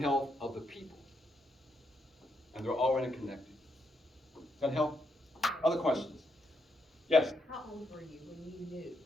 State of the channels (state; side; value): normal; both; correlation 0.79